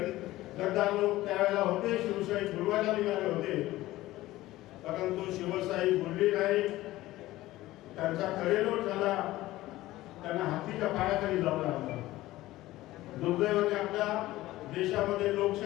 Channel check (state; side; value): quieter; right; 16.8 dB